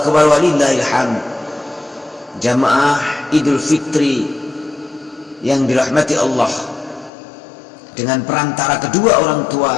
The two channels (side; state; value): right; drops out; at 7.1 s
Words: walillahil hamd. Jamaah Idul Fitri yang dirahmati Allah, dengan perantara kedua orang tua